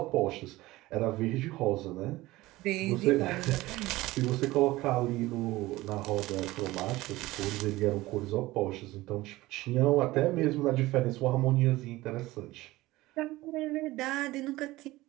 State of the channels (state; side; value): quieter; left; 18.5 dB